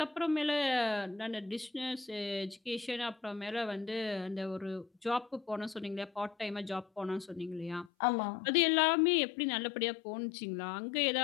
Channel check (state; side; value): drops out; right; at 7.9 s